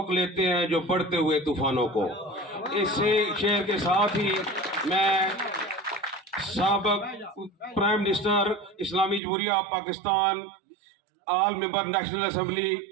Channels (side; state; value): left; drops out; at 9.2 s